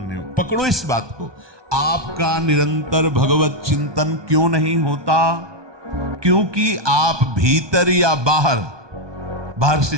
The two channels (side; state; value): left; late; 1.2 ms